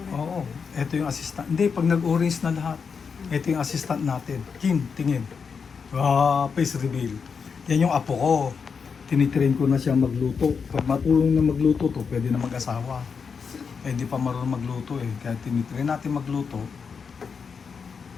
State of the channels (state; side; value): quieter; right; 5.8 dB